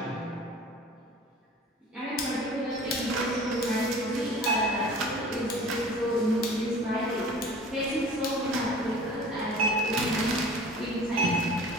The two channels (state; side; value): normal; both; correlation 0.43